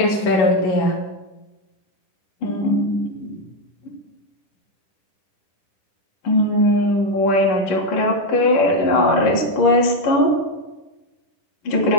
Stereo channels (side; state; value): right; late; 11 ms